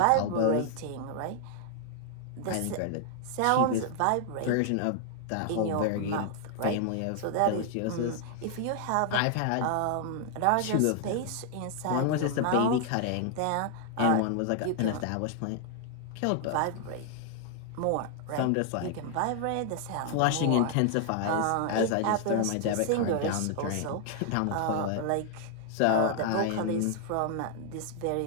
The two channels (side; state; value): both; different; correlation 0.00